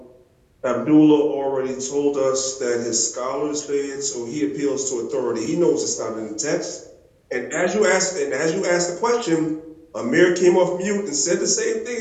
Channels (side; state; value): both; identical; correlation 1.00